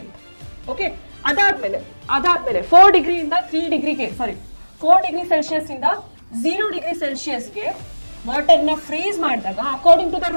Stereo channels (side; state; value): both; inverted; correlation -1.00